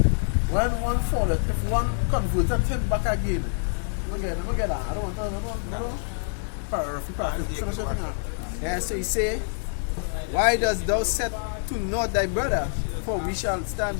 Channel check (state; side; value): silent; right; digital silence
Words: one falleth, if one converted him back again, look at that. I don't know. Yeah, so he say, why dost thou set to naught thy brother? For we shall stand